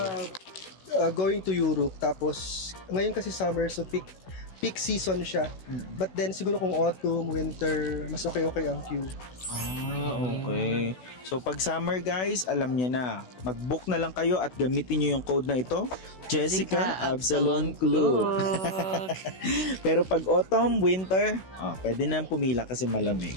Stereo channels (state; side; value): late; right; 16 ms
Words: to. going to Europe, tapos ngayon kasi summer, so peak season siya. But then siguro kung autumn, winter, mas okay ang queue. Okay. So pag summer guys, alam niyo na, mag-book na lang kayo at gamitin niyo yung code na ito, Jessica Absalon Klook. Pero pag autumn, winter, pwede na pumila kasi